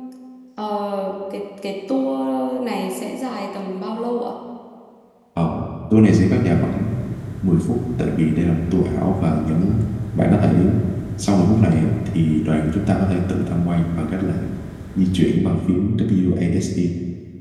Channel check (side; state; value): both; identical; correlation 1.00